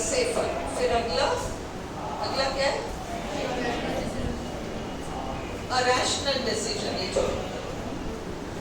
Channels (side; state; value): both; identical; correlation 1.00